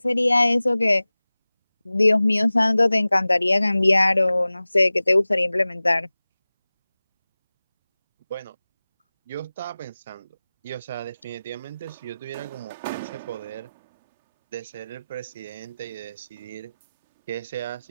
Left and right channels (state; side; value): inverted; both; correlation -0.98